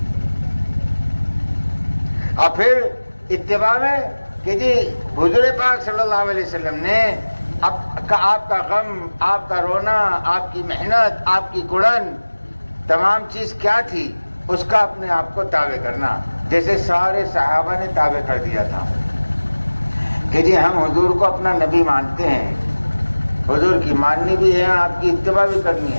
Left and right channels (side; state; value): both; inverted; correlation -1.00